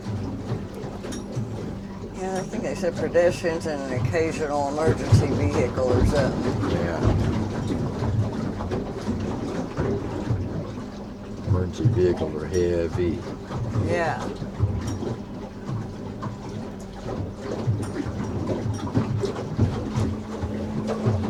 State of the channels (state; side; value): identical; both; correlation 1.00